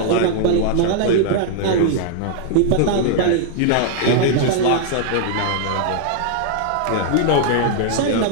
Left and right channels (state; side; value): different; both; correlation -0.01